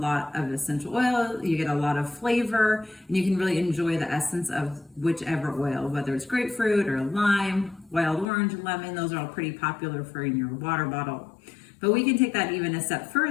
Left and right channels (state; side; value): drops out; right; at 8.2 s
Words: of essential oil. You get a lot of flavor, and you can really enjoy the essence of whichever oil, whether it's grapefruit or lime, wild orange, lemon. Those are all pretty popular for in your water bottle. But we can take that even a step